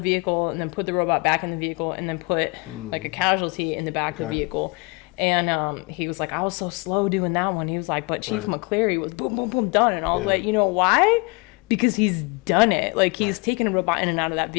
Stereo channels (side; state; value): right; quieter; 28.6 dB